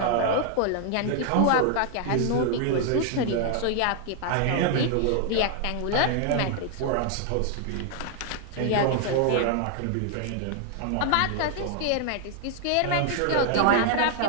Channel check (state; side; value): different; both; correlation 0.00